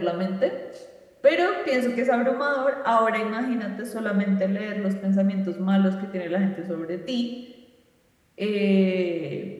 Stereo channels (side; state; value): both; identical; correlation 1.00